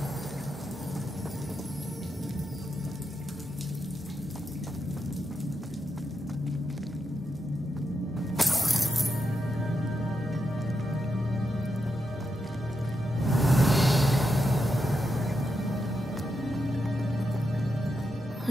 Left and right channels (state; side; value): normal; both; correlation 0.85